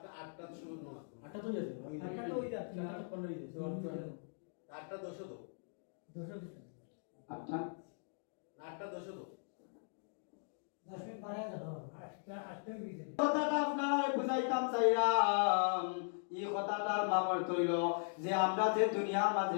শুরু না আটটা তো যাচ্ছে আটটা তো ওই যাচ্ছে 15 হইছে আটটা দশ তো আটটা আটটা দশ তো কথাটা আপনারা বুঝাইতাম চাইরাম এই কথাটার মামর তৈল যে আমরা যে দুনিয়ার মাঝে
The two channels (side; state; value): right; silent; digital silence